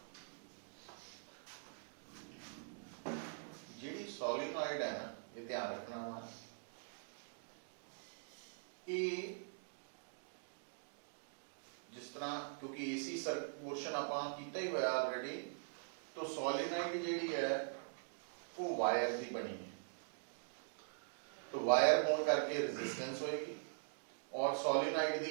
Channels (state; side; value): silent; left; digital silence